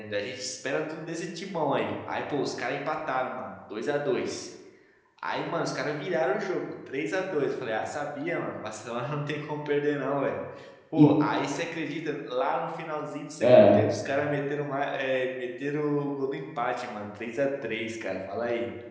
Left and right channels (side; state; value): both; identical; correlation 1.00